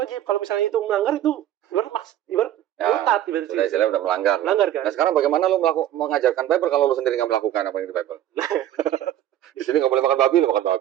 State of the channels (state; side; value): quieter; left; 12.2 dB